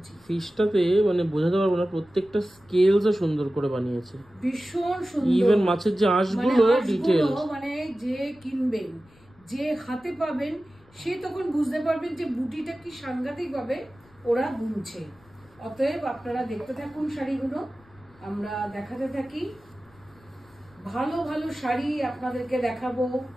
ফিশটাতে মানে বোঝাতে পারবো না, প্রত্যেকটা স্কেলসও সুন্দর করে বানিয়েছে, ভীষণ সুন্দর। ইভেন মাছের যে আঁশগুলো ডিটেইল, মানে যে কিনবেন, যে হাতে পাবেন, সে তখন বুঝতে পারবেন যে বুটিটা কি সাংঘাতিক ভাবে ওরা বুনছে। অতএব আপনারা দেখতে থাকুন শাড়িগুলো, আমরা দেখাতে থাকি। ভালো ভালো শাড়ি আপনাদেরকে দেখাবো,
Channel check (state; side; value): noise; left; rumble, 29 dB below the sound